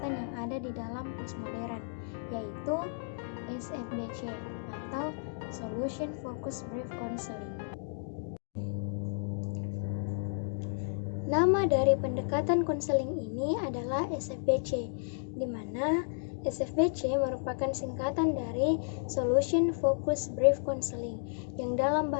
yang ada di dalam postmodern, yaitu SFBC atau Solution Focused Brief Counseling. Nama dari pendekatan konseling ini adalah SFBC, di mana SFBC merupakan singkatan dari Solution Focused Brief Counseling, yang dalam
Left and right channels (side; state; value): right; silent; digital silence